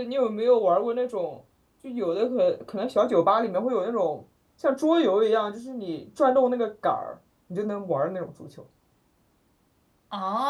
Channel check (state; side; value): identical; both; correlation 1.00